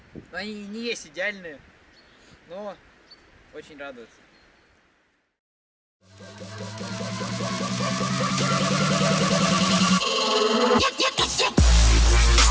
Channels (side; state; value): both; identical; correlation 1.00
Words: Но они не есть идеальные. Но очень радуются.